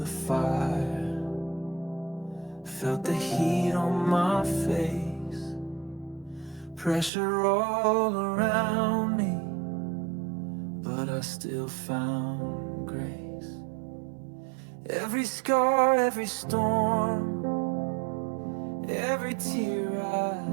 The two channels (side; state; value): left; drops out; at 7.1 s